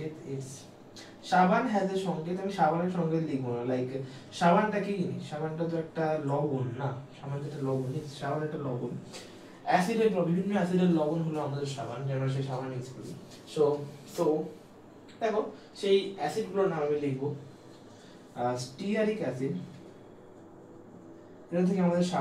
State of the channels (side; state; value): both; identical; correlation 1.00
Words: it's সাবান has a সংকেত। আমি সাবানের সংকেত লিখবো না, লাইক সাবানটা কি জিনিস? সাবানটা তো একটা লবণ না, সাবান যেটা লবণ, সাবান একটা লবণ, অ্যাসিডের বিভিন্ন অ্যাসিডের লবণ হলো আমাদের সাবান, যে আমরা সেই সাবান ইউজ করি। সো দেখো সেই অ্যাসিডগুলোর নাম আমি লিখবো। স্টিয়ারিক অ্যাসিড, এটা থেকে আমাদের